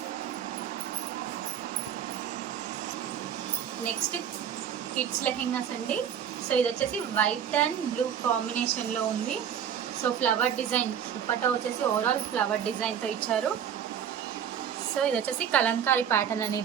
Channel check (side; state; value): left; quieter; 8.8 dB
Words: నెక్స్ట్ కిడ్స్ లెహెంగాస్ అండి. సో ఇది వచ్చేసి వైట్ అండ్ బ్లూ కాంబినేషన్లో ఉంది. సో ఫ్లవర్ డిజైన్ దుపట్టా వచ్చేసి ఓవరాల్ ఫ్లవర్ డిజైన్తో ఇచ్చారు. సో ఇది వచ్చేసి కలంకారీ ప్యాటర్న్